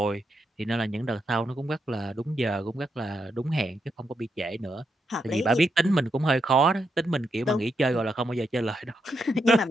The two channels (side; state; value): both; normal; correlation 0.82